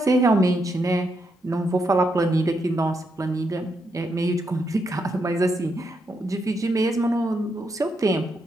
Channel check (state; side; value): normal; both; correlation 0.80